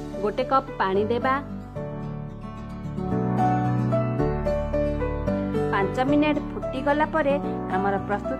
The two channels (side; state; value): both; identical; correlation 1.00